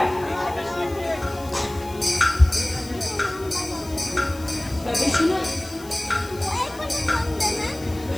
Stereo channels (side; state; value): left; noise; hiss, 19 dB below the sound